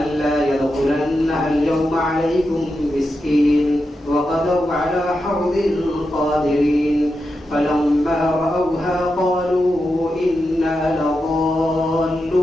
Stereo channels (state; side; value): normal; both; correlation 0.88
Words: يدخلنها اليوم عليكم مسكين وغدوا على حرد قادرين فلما رأوها قالوا إنا